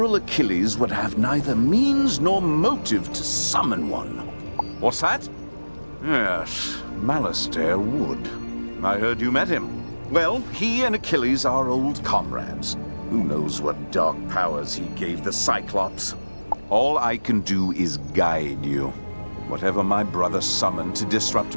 Achilles would have neither means nor motive to summon one. What's that? Yes, Malastair would. I heard you met him. Well, he and Achilles are old comrades. Who knows what dark powers he gave the Cyclops? All I can do is guide you. Whatever my brother summoned to disrupt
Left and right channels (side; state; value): both; inverted; correlation -1.00